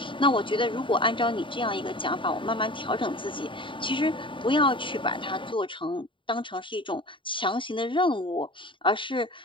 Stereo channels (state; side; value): late; right; 0.24 ms